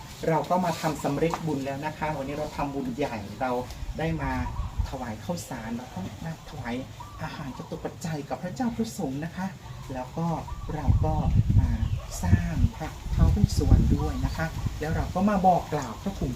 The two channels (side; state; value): both; identical; correlation 1.00